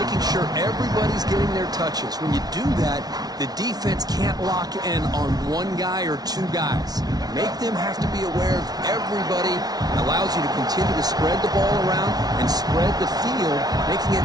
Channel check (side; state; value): left; late; 0.19 ms